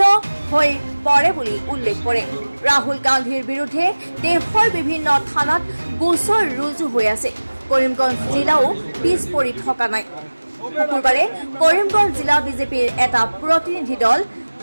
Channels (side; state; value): both; inverted; correlation -1.00